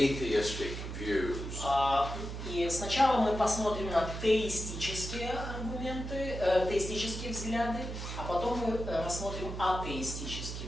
views. И сначала мы посмотрим на теистические аргументы, теистические взгляды, а потом мы рассмотрим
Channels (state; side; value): noise; right; hum, 7 dB below the sound